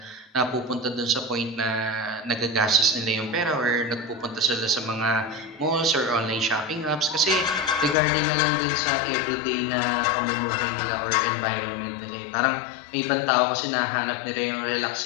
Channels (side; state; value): right; drops out; at 8.0 s